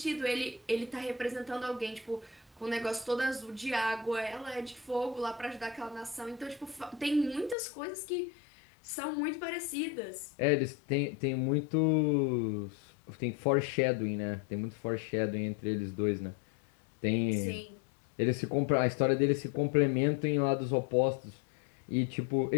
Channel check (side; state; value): right; drops out; at 7.6 s